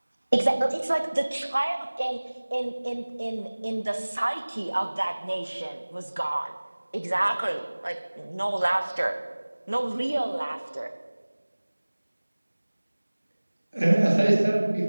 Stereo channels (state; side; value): inverted; both; correlation -1.00